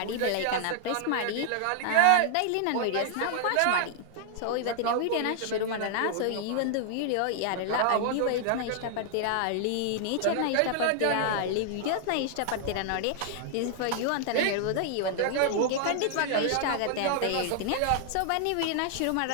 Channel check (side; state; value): both; different; correlation 0.00